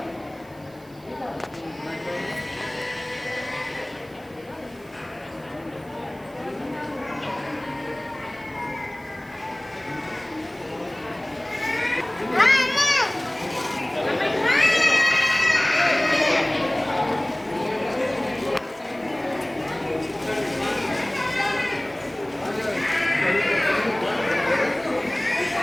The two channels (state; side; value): noise; right; hiss, 28 dB below the sound